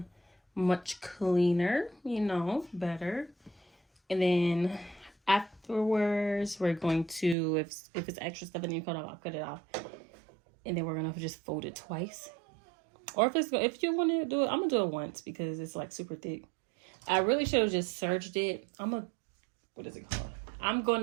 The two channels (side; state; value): left; drops out; at 7.4 s